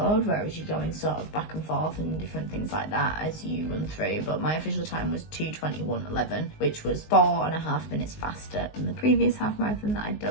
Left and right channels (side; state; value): right; late; 19 ms